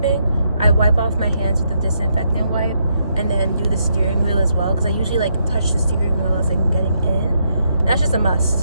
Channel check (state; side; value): inverted; both; correlation -0.77